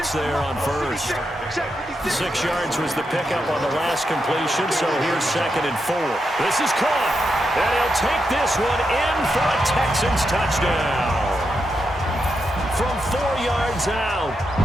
there on first. 6 yards was the pickup on the last completion, so here's 2nd and 4. This is caught, and he'll take this one in for a Texans touchdown. From 4 yards out,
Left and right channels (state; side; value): normal; both; correlation 0.85